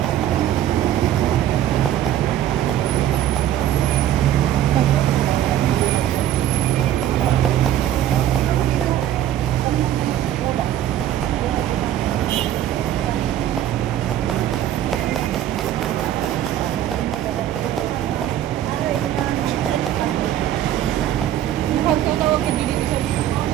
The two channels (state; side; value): quieter; left; 11.7 dB